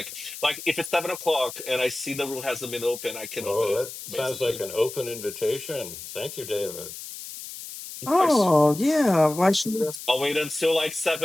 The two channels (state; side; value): noise; left; hiss, 11 dB below the sound